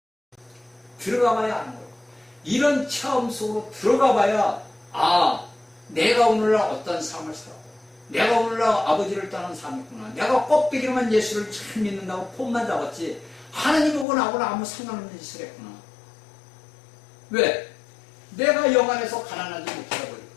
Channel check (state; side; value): drops out; right; at 14.1 s